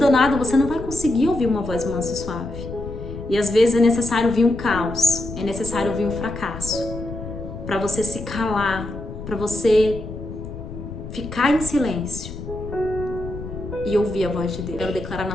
você não vai conseguir ouvir uma voz mansa e suave. E às vezes é necessário vir um caos, é necessário vir um fracasso, para você se calar, para você ficar em silêncio e ouvir a voz de Deus. Quero declarar na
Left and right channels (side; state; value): left; noise; rumble, 10 dB below the sound